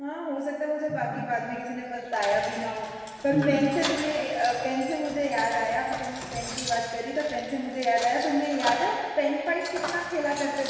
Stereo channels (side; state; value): both; identical; correlation 1.00